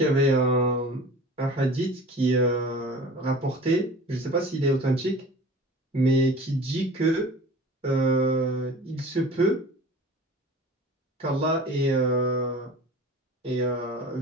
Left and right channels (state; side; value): normal; both; correlation 0.41